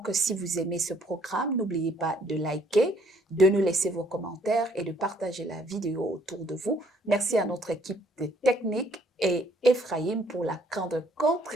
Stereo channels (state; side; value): normal; both; correlation 0.64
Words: si vous aimez ce programme, n'oubliez pas de liker, de nous laisser vos commentaires et de partager la vidéo autour de vous. Merci à notre équipe de technique et Ephraim pour la grande